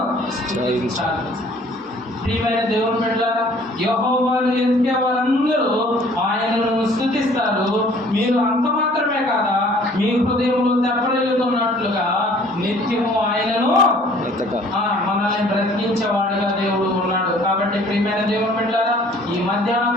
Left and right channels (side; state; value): both; normal; correlation 0.55